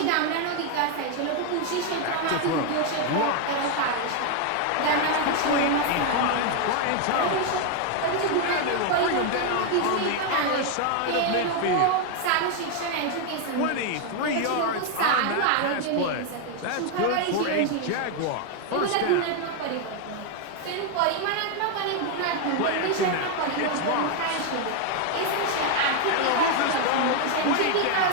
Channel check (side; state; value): both; different; correlation 0.01